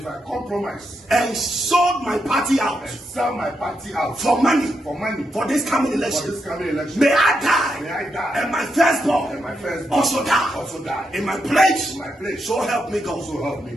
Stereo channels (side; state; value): both; normal; correlation 0.83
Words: I compromise. And sold my party out. And sell my party out. For money. For money. For this coming election. For this coming election. May I die. May I die. And my firstborn. And my firstborn. Also die. Also die. In my place. In my place. So help me God. So help me